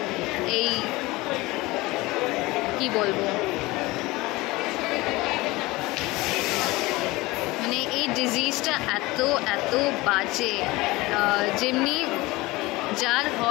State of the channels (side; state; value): right; quieter; 21.1 dB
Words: এই কি বলবো, মানে এই ডিজিজটা এত এত বাজে, যেমনি যার